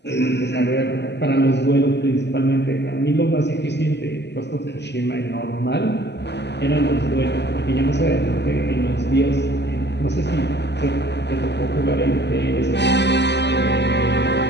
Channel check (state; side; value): late; right; 0.50 ms